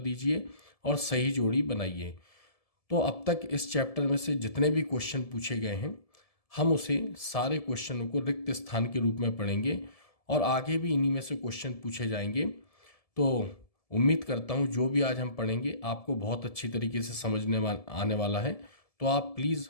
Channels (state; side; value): late; right; 1.7 ms